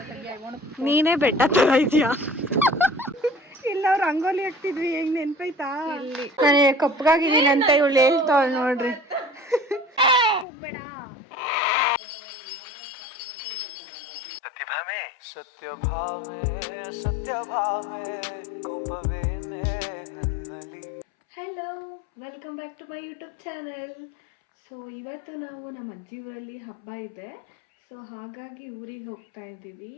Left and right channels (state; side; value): drops out; right; at 10.5 s